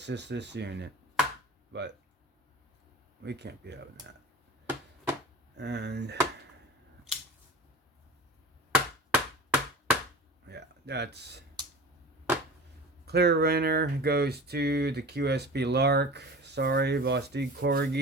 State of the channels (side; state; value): both; normal; correlation 0.37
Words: just this unit, but we can't be having that. And yeah, that's clear winner goes to the QSP Lark. Sorry, Vosteed